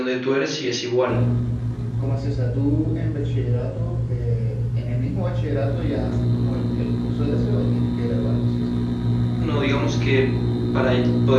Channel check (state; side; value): identical; both; correlation 1.00